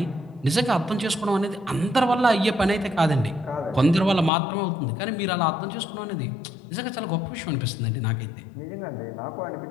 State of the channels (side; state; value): right; drops out; at 4.3 s